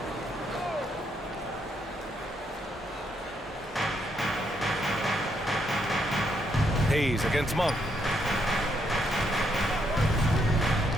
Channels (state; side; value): normal; both; correlation 0.76